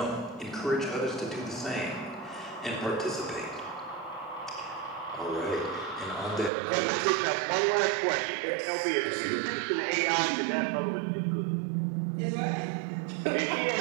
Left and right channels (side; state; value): left; drops out; at 6.5 s